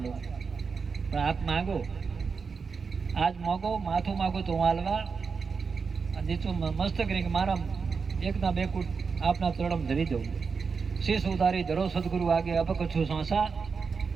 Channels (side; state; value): left; quieter; 5.3 dB